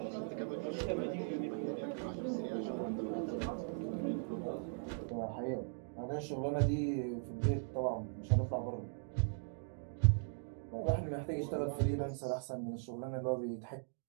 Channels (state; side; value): silent; left; digital silence